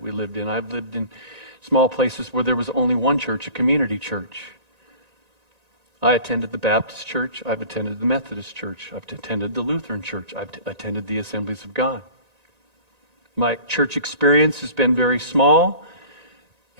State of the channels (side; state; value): left; late; 1.9 ms